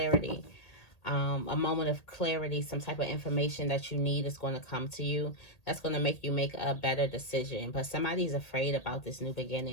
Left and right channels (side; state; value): right; late; 1.8 ms